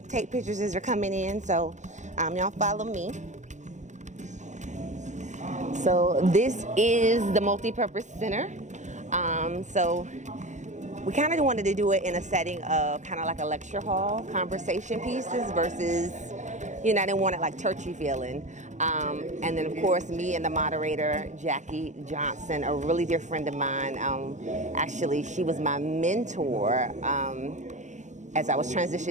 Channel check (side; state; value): left; late; 0.35 ms